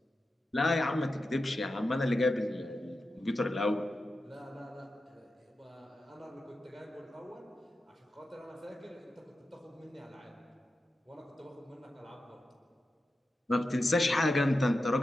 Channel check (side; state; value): both; normal; correlation 0.91